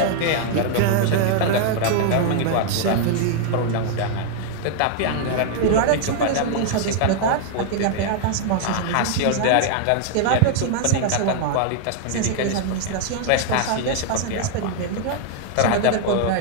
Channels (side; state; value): both; different; correlation 0.00